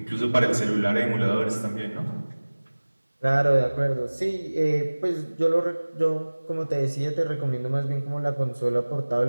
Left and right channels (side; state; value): both; inverted; correlation -1.00